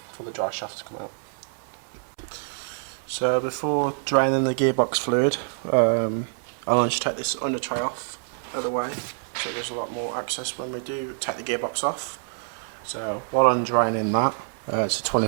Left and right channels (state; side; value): silent; left; 61 dB below the other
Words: for the dry shaft to come out. So before draining the gearbox fluid, I'll just take this under tray off out of the way, so there's a lot more access when we do take the gearbox off. So while I'm draining that, it's a